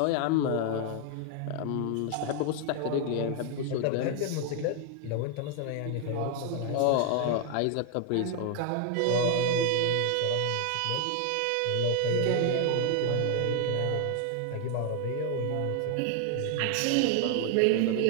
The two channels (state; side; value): different; both; correlation 0.00